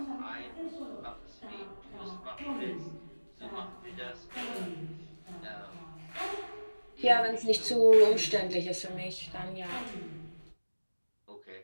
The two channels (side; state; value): both; inverted; correlation -1.00